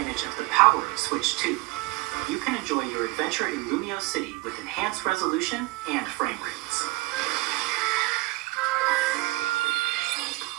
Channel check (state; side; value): quieter; left; 22.4 dB